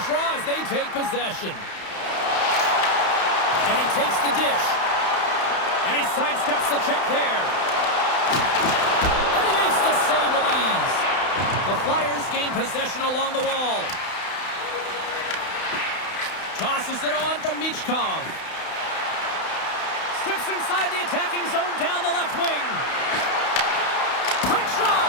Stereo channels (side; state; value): right; late; 31 ms